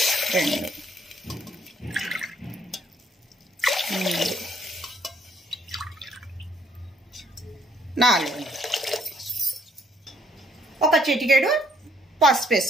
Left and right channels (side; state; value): both; normal; correlation 0.66